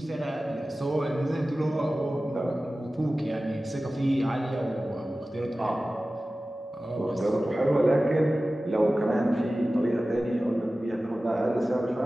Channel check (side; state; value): both; normal; correlation 0.96